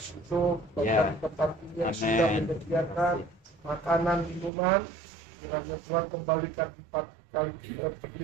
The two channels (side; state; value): left; drops out; at 4.5 s